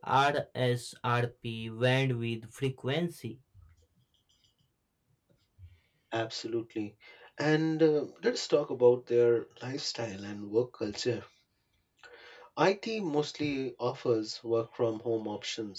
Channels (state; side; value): identical; both; correlation 1.00